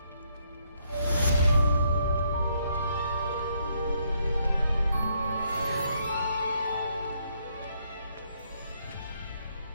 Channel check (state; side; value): inverted; both; correlation -0.72